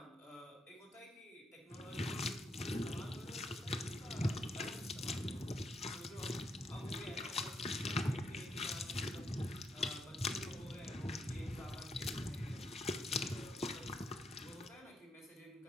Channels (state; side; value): normal; both; correlation 0.79